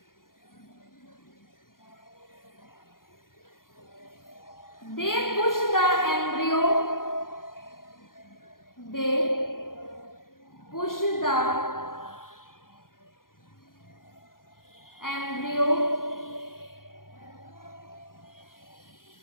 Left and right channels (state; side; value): late; right; 0.91 ms